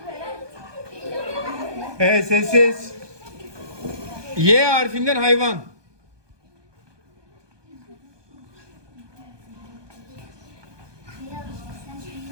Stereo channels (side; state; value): left; late; 1.2 ms